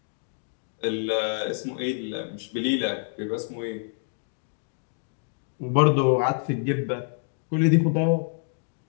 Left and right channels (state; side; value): silent; right; digital silence